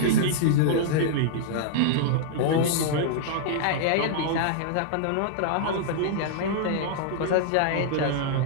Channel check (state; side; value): different; both; correlation -0.01